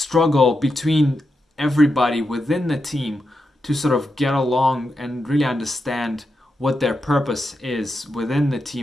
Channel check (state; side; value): normal; both; correlation 0.87